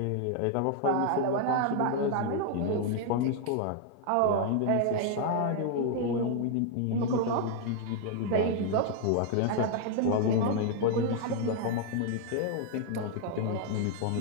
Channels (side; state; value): both; different; correlation 0.00